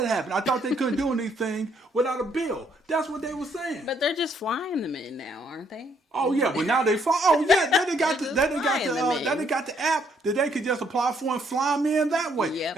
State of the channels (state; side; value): normal; both; correlation 0.69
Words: that happen? I thought they couldn't do anything without a bill. That's what they were saying. But they're just flying them in now, aren't they? Oh yeah, but now they fly. Oh yeah, then they got the app that they could just apply for and fly them in that way. Yep.